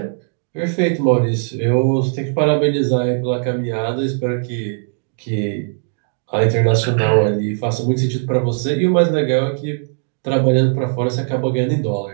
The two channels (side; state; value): left; silent; digital silence